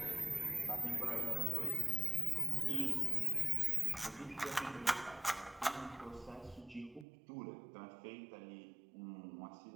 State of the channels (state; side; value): drops out; left; at 7.1 s